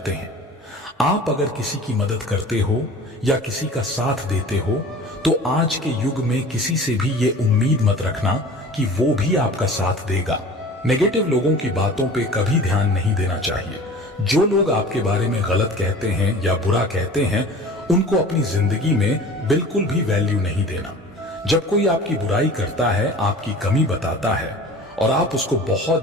हैं। आप अगर किसी की मदद करते हो या किसी का साथ देते हो तो आज के युग में किसी से भी ये उम्मीद मत रखना कि वो भी आपका साथ देगा। नेगेटिव लोगों की बातों पे कभी ध्यान नहीं देना चाहिए। जो लोग आपके बारे में गलत कहते हैं या बुरा कहते हैं, उनको अपनी जिंदगी में बिल्कुल भी वैल्यू नहीं देना। जब कोई आपकी बुराई करता है, आपकी कमी बताता है और आप उसको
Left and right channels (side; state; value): both; normal; correlation 0.41